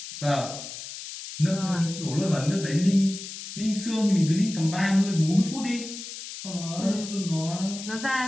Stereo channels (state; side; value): noise; left; hiss, 10 dB below the sound